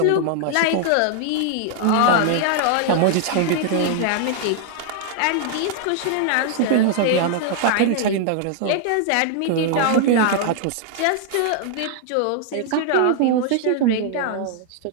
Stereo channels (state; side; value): different; both; correlation 0.00